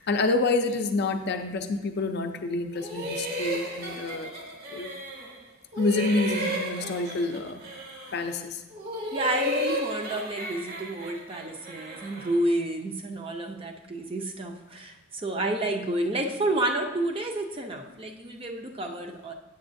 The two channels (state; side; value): normal; both; correlation 0.33